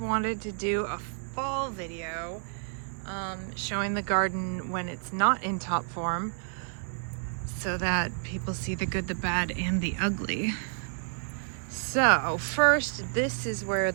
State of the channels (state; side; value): silent; left; 58 dB below the other